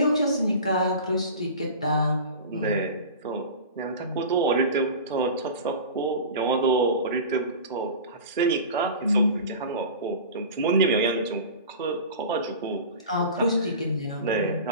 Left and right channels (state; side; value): inverted; both; correlation -0.34